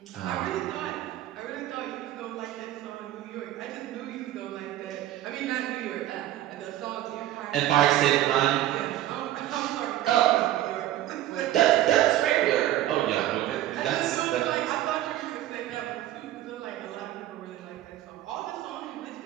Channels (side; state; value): left; quieter; 13.9 dB